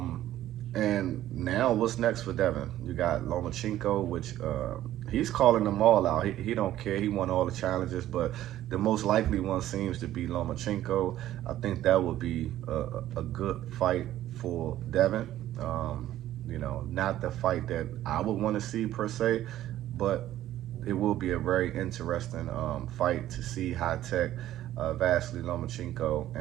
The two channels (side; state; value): left; quieter; 13.3 dB